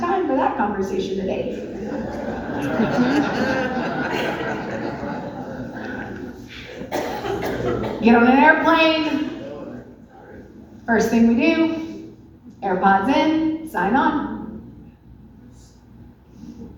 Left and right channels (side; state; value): both; identical; correlation 1.00